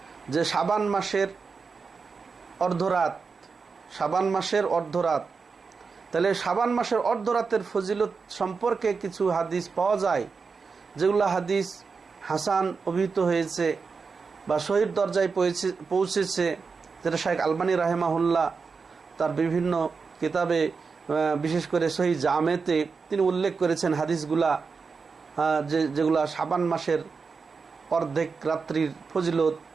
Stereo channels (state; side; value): quieter; left; 5.0 dB